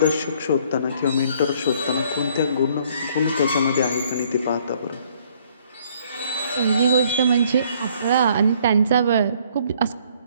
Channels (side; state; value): both; inverted; correlation -0.62